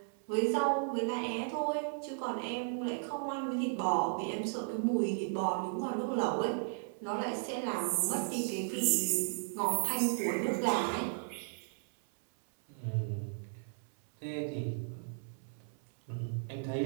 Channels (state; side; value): silent; left; 54 dB below the other